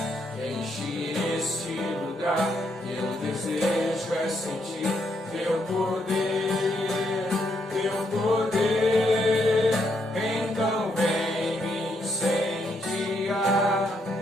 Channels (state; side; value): normal; both; correlation 0.76